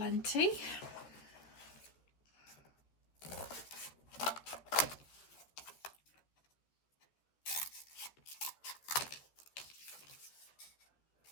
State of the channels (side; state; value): right; late; 13 ms